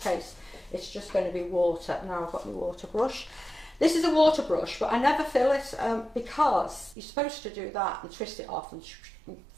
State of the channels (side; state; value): left; drops out; at 7.0 s